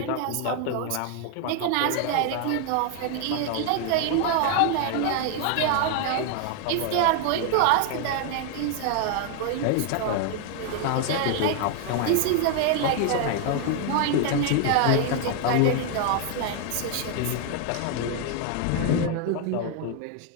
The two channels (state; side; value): different; both; correlation 0.00